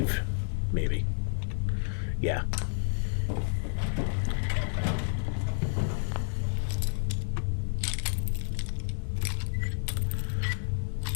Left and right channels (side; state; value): right; silent; digital silence